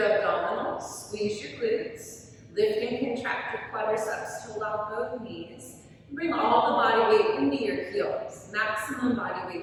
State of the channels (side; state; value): both; identical; correlation 1.00